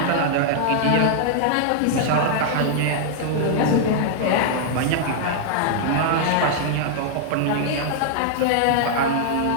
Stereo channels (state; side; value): different; both; correlation -0.01